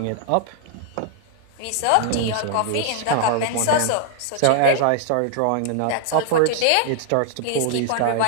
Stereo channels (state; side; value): different; both; correlation 0.00